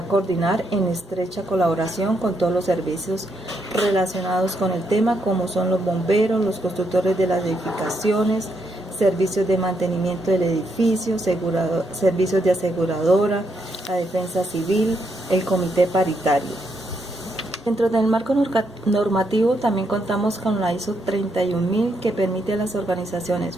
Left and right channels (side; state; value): both; normal; correlation 0.78